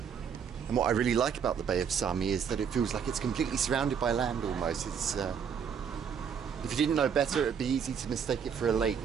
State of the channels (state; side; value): quieter; left; 7.2 dB